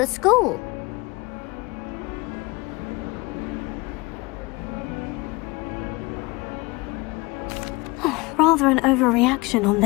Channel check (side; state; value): right; quieter; 24.2 dB